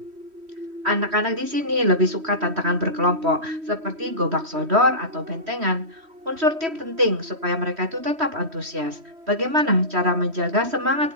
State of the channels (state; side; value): late; left; 3.1 ms